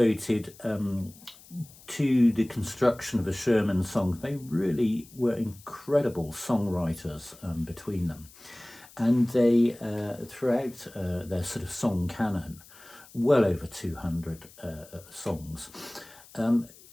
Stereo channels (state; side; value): noise; left; hiss, 22 dB below the sound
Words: to the construction of the Sherman songs. They really were incredible songwriters between them. And they, throughout their sort of song canon, well over 200 songs.